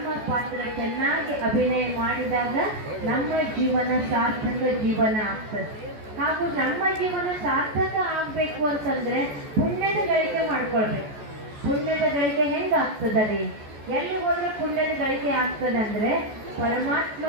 ಪಾತ್ರ ಚೆನ್ನಾಗಿ ಅಭಿನಯ ಮಾಡಿದಾಗ ನಮ್ಮ ಜೀವನ ಸಾರ್ಥಕ ಜೀವನ ಆಗ್ತದೆ. ಹಾಗೂ ನಮ್ಮ ಜೀವನ ಸಾರ್ಥಕ ಆಗ್ಬೇಕು ಅಂತಂದ್ರೆ ಪುಣ್ಯದ ಗಳಿಕೆ ಮಾಡ್ಕೊಳ್ಬೇಕು. ಪುಣ್ಯದ ಗಳಿಕೆ ಹೆಂಗಾಗ್ತದೆ? ಎಲ್ಲಿ ಹೋದ್ರೆ ಪುಣ್ಯದ ಗಳಿಕೆ ಆಗ್ತದೆ ಅಂದ್ರೆ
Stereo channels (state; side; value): late; left; 14 ms